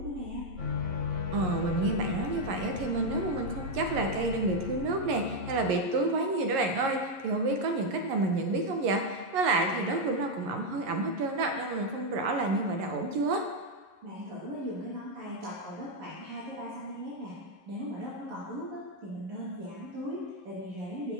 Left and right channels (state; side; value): late; left; 11 ms